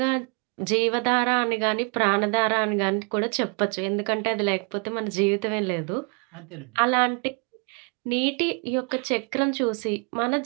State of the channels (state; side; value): quieter; left; 35.7 dB